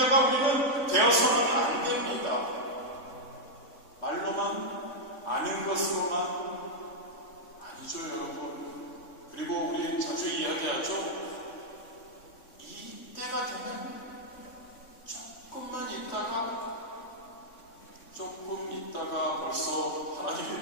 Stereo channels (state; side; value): late; right; 3.6 ms